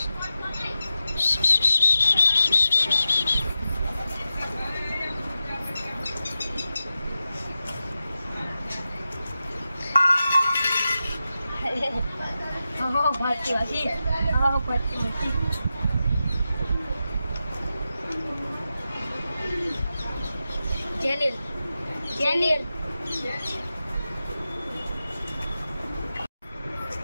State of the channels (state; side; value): inverted; both; correlation -0.91